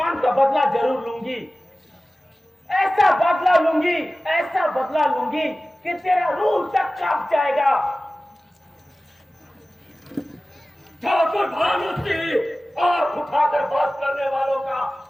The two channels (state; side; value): normal; both; correlation 0.96